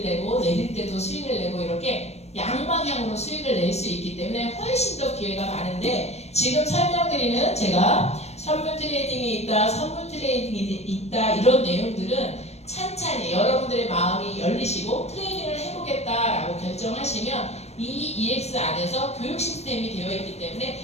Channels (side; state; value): right; late; 0.31 ms